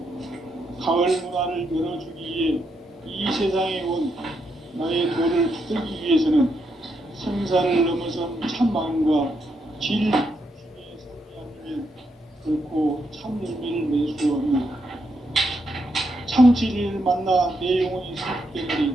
가을 문화를 열어주기 위해 이 세상에 온 나의 도를 붙들기 위해서는 생사를 넘어선 참 마음과 질 중심의 삶이 아니면 결코 참 열매를 맺을 수 없는 참 진리를 만나 내 영혼이 성숙되는 데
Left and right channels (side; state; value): both; normal; correlation 0.80